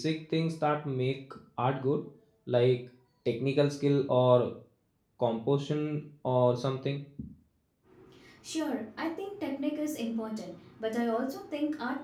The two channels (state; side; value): identical; both; correlation 1.00